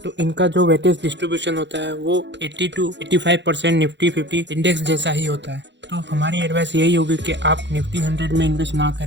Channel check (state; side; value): late; left; 0.52 ms